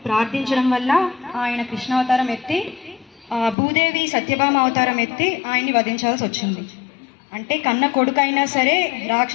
ప్రార్థించడం వల్ల ఆయన కృష్ణావతారం ఎత్తి భూదేవి సత్యభామ అవతారం ఎత్తి ఆయన్ని వధించాల్సి వచ్చింది. అంటే కన్న కొడుకైనా సరే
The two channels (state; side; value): drops out; right; at 3.6 s